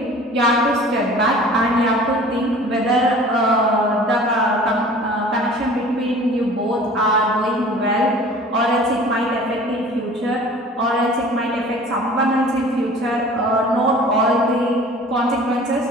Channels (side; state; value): both; normal; correlation 0.45